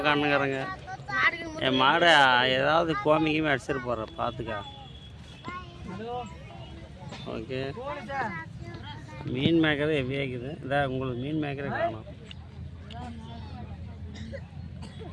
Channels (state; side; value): identical; both; correlation 1.00